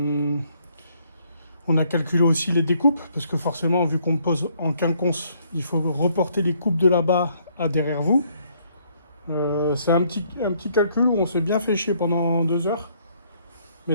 a calculé aussi les découpes, parce que forcément, vu qu'on pose en quinconce, il faut reporter les coupes de là-bas à derrière vous. C'est un petit calcul où on s'est bien fait chier pendant 2 heures,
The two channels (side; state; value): both; inverted; correlation -0.67